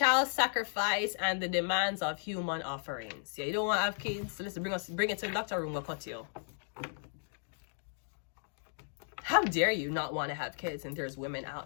sacrifice and the demands of human offerings. Yeah, you don't want to have kids, so let's bring it to the doctor room, we'll cut you. How dare you not want to have kids, and there's women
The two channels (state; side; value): silent; right; 55 dB below the other